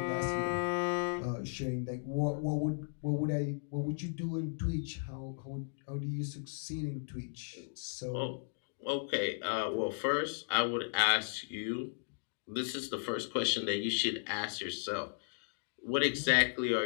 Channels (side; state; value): right; silent; digital silence